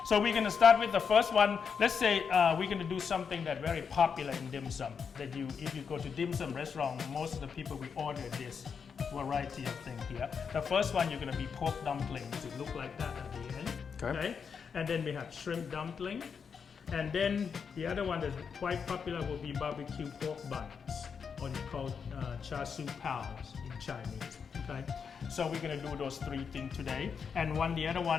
So we're going to start with the first one. Let's say we're going to do something that's very popular in dim sum. That if you go to dim sum restaurant, most of the people will order this variety of thing here. The first one you're going to be pork dumplings. It look like that at the end. Okay. And then we have shrimp dumpling. And then the other one that's quite popular will be barbecue pork buns, or you call char siu pows in Chinese. Okay. So we're going to do those three things today. And the other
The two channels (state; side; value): quieter; right; 6.3 dB